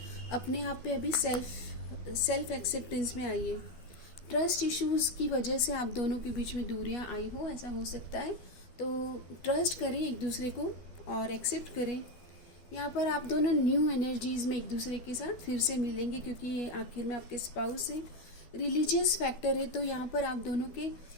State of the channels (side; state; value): right; late; 12 ms